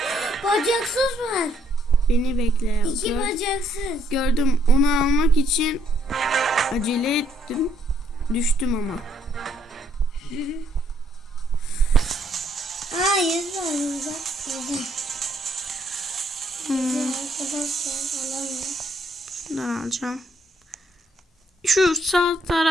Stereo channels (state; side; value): normal; both; correlation 0.69